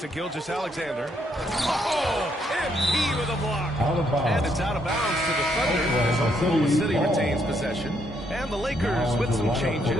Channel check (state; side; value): normal; both; correlation 0.73